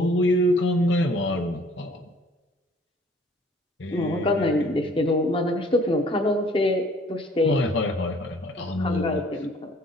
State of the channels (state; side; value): normal; both; correlation 0.56